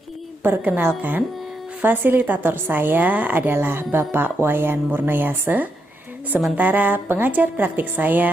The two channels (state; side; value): normal; both; correlation 0.81